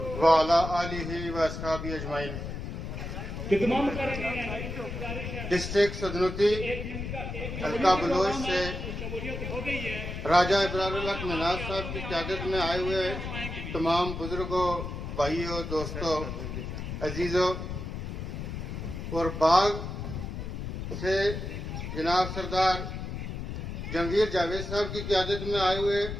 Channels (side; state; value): left; noise; rumble, 6 dB below the sound